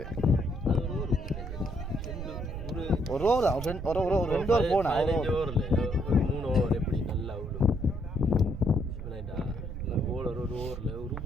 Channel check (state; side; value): noise; right; rumble, 8 dB below the sound